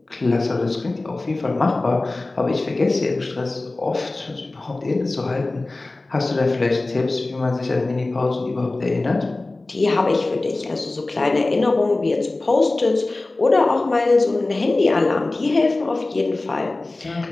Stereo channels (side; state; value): right; quieter; 3.1 dB